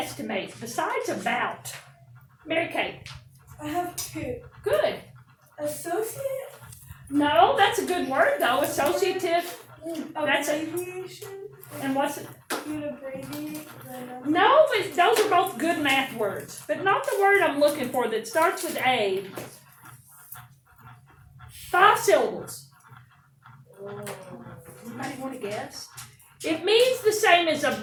besides about. Mary Kate. I have two. Good. Associate. No, that's a good word, though. Associative. That's it. Abbreviation. And what's it? You'd abbreviate the number. No, but those are both good math words. But not the word I'm looking for that starts with A. 5 syllables. Anybody want to guess? It means the same as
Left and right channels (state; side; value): identical; both; correlation 1.00